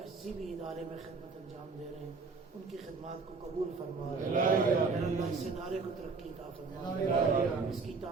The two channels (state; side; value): quieter; left; 4.4 dB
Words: بھی ادارے میں خدمت انجام دے رہے ہیں ان کی خدمات کو قبول فرما میرا اللہ اس ادارے کو ترقی عطا فرما اس کی